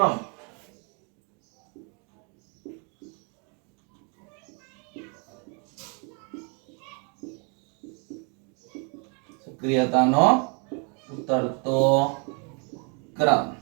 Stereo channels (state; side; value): quieter; left; 35.9 dB